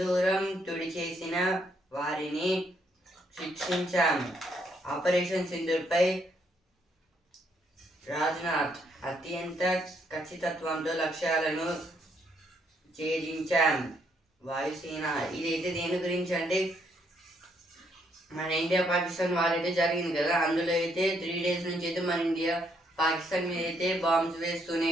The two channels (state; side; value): normal; both; correlation 0.72